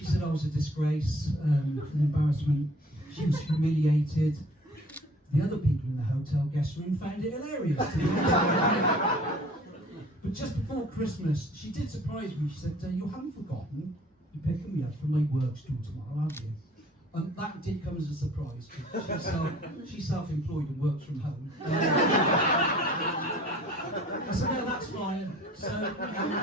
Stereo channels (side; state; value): both; normal; correlation 0.52